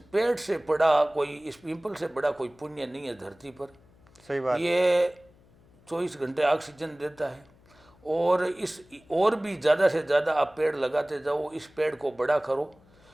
पेड़ से बड़ा कोई, इस पीपल से बड़ा कोई पुण्य नहीं है धरती पर। सही बात। ये 24 घंटे ऑक्सीजन देता है, और इस और भी ज़्यादा से ज़्यादा आप पेड़ लगाते जाओ, इस पेड़ को बड़ा करो।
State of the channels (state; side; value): noise; left; hum, 29 dB below the sound